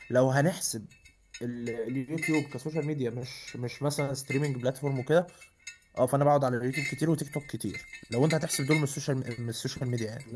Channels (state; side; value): identical; both; correlation 1.00